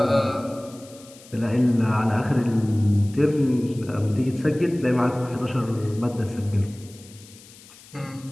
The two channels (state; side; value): noise; left; hiss, 22 dB below the sound